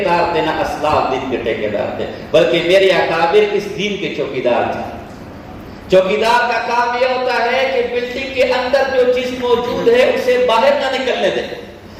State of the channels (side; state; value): both; identical; correlation 1.00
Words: تھے نہ اسلاف دین کے ٹھیکیدار تھے، بلکہ میرے اکابر اس دین کے چوکیدار تھے۔ چوکیدار کا کام یہ ہوتا ہے کہ بلڈنگ کے اندر جو چیز موجود ہے اسے باہر نہ نکلنے دے،